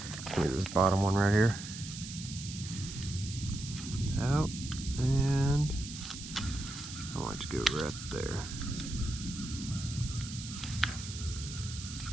Give me this bottom one right here. out, and I want it to go right there.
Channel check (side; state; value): right; noise; hiss, 10 dB below the sound